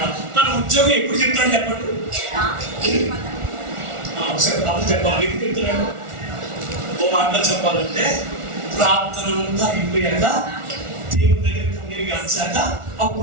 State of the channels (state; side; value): late; left; 1.4 ms